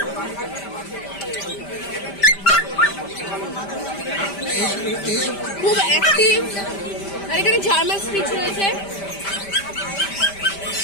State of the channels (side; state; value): right; late; 5.1 ms